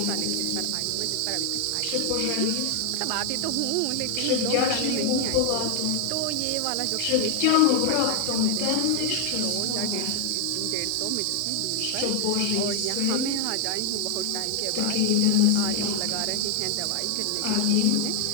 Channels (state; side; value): different; both; correlation 0.00